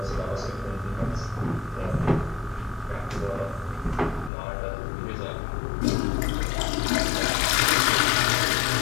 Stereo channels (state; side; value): drops out; right; at 4.3 s